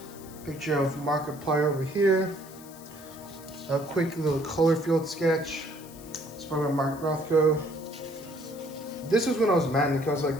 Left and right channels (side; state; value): left; noise; hiss, 19 dB below the sound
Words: picture of Markiplier over here. A quick little color field sketch. It's by Mark Rothko. This was when I was manic. I was